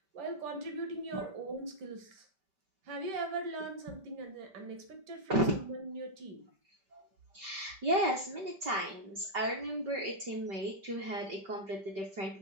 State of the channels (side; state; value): left; late; 5.1 ms